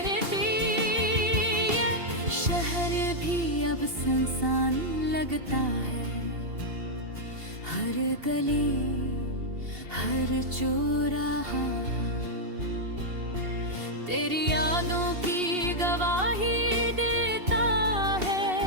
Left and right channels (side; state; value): left; late; 2.7 ms